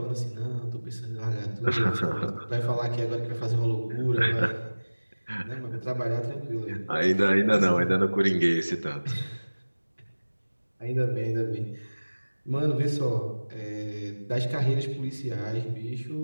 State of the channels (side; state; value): both; inverted; correlation -1.00